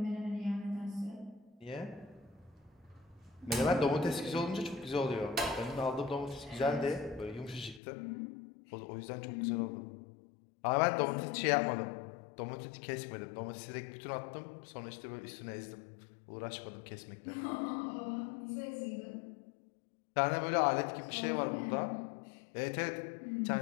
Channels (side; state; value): right; drops out; at 7.8 s